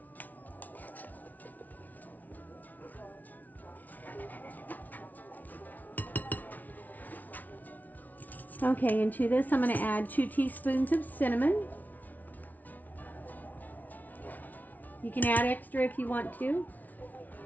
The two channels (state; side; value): late; right; 0.077 ms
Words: Okay, and to this I'm going to add 2 teaspoons of cinnamon. You can add extra if you want to.